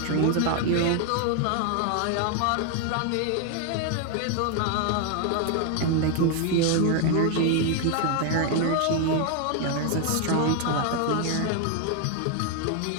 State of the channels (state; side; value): different; both; correlation 0.00